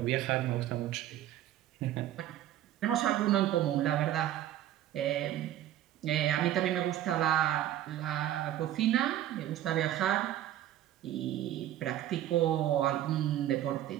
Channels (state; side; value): quieter; left; 12.5 dB